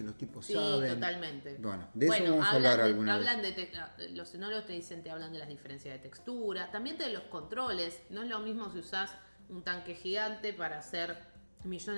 los tipos Sí, saben. totalmente. Bueno, de eso vamos a hablar alguna vez. Los enólogos te hablan de las diferencias de textura, también de los controles. No es lo mismo si usás un tanque gigante para hacer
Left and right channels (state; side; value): inverted; both; correlation -1.00